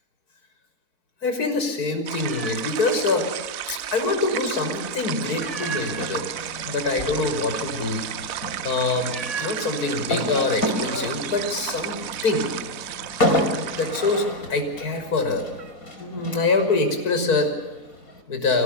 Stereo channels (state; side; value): late; right; 4.6 ms